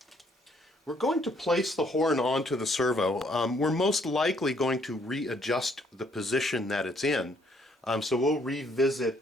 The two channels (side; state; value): both; normal; correlation 0.67